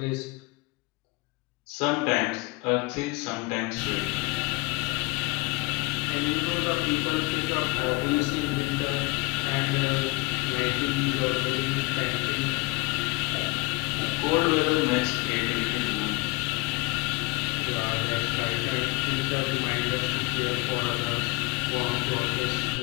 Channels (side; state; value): right; quieter; 23.1 dB